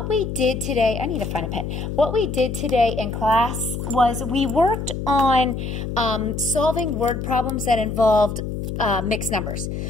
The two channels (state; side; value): noise; left; hum, 5 dB below the sound